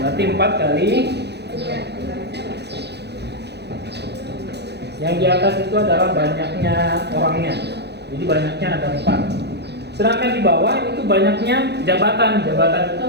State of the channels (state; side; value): late; left; 0.49 ms